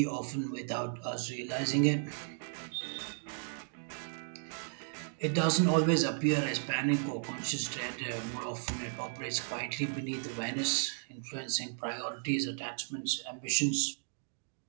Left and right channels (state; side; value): silent; left; digital silence